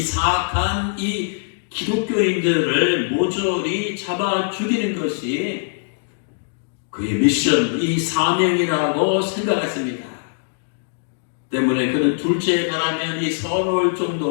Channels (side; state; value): right; silent; digital silence